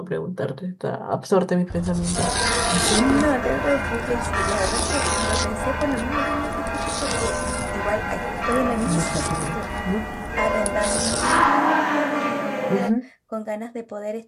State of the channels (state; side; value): identical; both; correlation 1.00